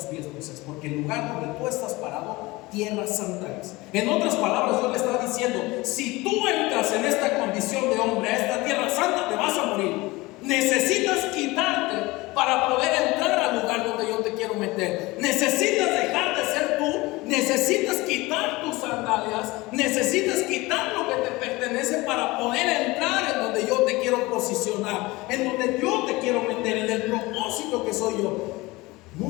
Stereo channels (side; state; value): right; quieter; 21.6 dB